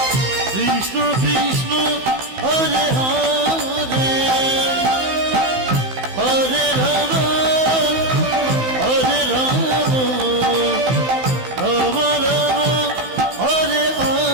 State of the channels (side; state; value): left; late; 16 ms